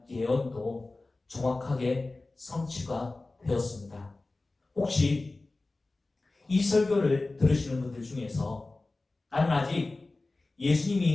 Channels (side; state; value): right; quieter; 3.2 dB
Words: 예언도 정확하게 성취가 되었습니다. 혹시 이 설교를 들으시는 분들 중에서 나는 아직